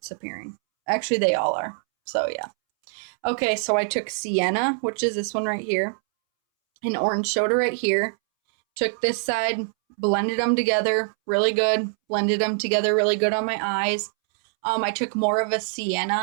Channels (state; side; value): silent; left; 63 dB below the other